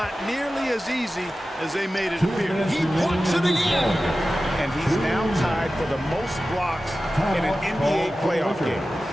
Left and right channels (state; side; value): normal; both; correlation 0.94